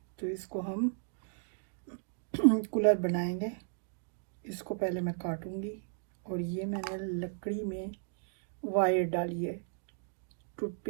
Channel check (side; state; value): left; silent; digital silence